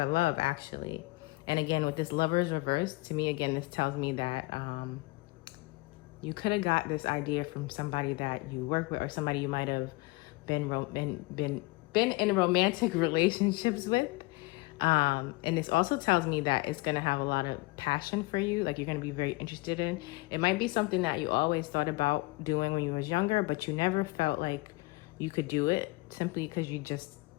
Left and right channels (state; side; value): quieter; right; 24.0 dB